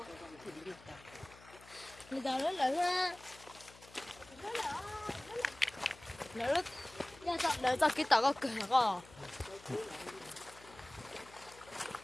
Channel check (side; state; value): left; noise; hum, 22 dB below the sound